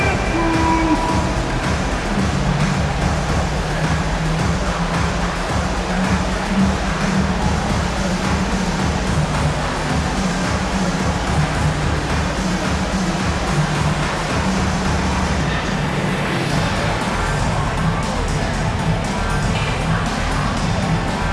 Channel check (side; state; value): both; identical; correlation 1.00